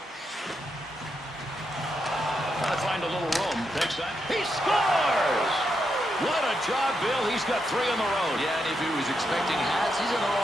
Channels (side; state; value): both; normal; correlation 0.83